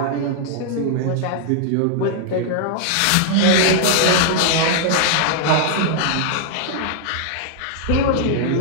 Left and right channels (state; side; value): different; both; correlation -0.01